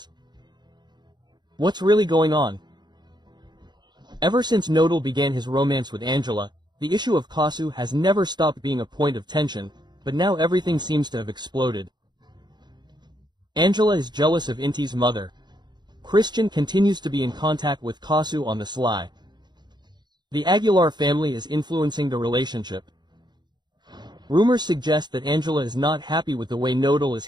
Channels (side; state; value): left; late; 0.21 ms